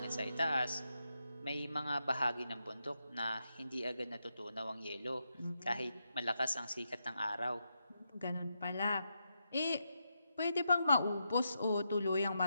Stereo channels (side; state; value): both; inverted; correlation -0.84